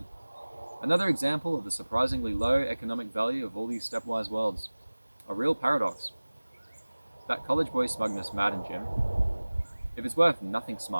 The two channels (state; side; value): inverted; both; correlation -1.00